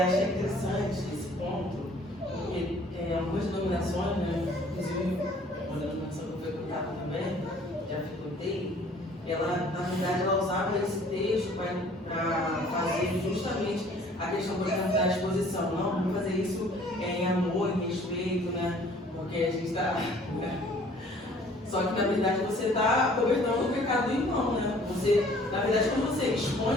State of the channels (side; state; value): both; normal; correlation 0.55